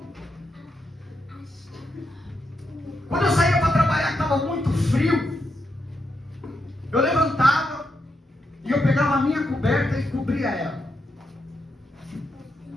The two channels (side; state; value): both; normal; correlation 0.83